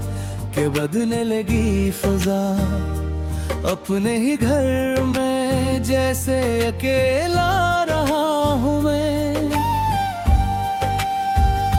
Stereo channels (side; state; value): both; identical; correlation 1.00